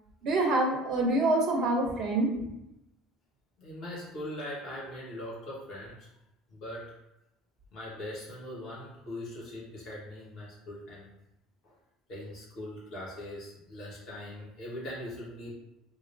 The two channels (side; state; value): both; normal; correlation 0.42